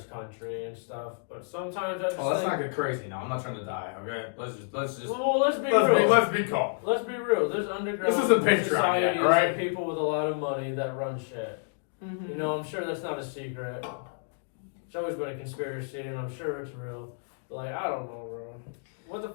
country and stuff, but sometimes I just Oh, let's think, not get crazy now. I'm not trying to die. Okay, let's just well, let's be real. let's be calm. Let's be real. There's underground This isn't Patreon yet, societies alright? of people with a lot of money that run shit. Mhm. You know, I'm sure that's not a secret. It's always been a conspiracy, and I'm sure it's real. But like, I don't know, bro. What the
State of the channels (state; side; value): silent; right; digital silence